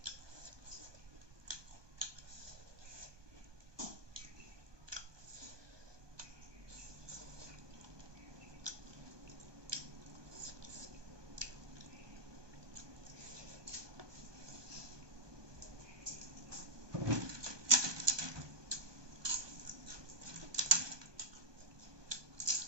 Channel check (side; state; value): left; late; 1.2 ms